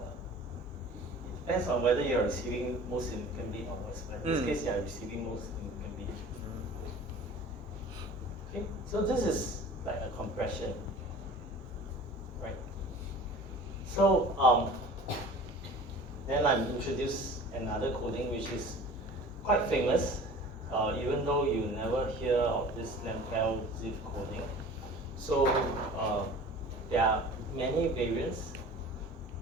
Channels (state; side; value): normal; both; correlation 0.42